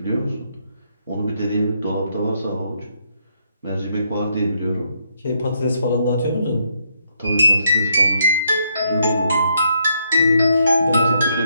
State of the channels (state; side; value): inverted; both; correlation -0.75